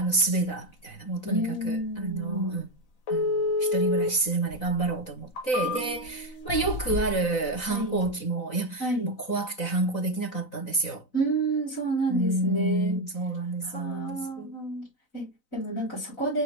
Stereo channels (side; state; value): right; late; 4.0 ms